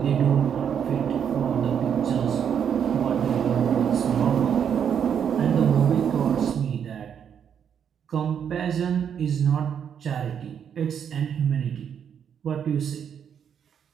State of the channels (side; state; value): left; quieter; 8.1 dB